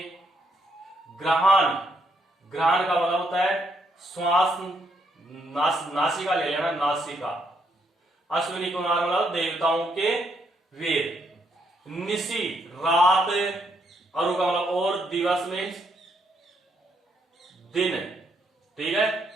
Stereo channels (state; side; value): normal; both; correlation 0.75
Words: ग्रहण, ग्रहण का मतलब होता है श्वास, नासिका ले लेना, नासिका। अश्विनी कुमार मतलब देवताओं के वेद। निशि रात, अरु का मतलब और, दिवस मीन्स दिन। ठीक है,